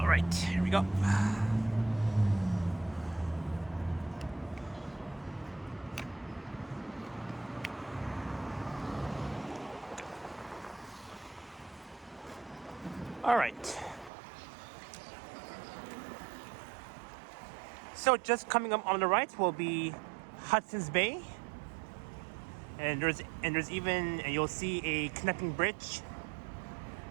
right, here we go. All right. So just coming up on the right will be Hudson's Bay, and there's even, and you'll see a connecting bridge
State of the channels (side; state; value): left; drops out; at 14.1 s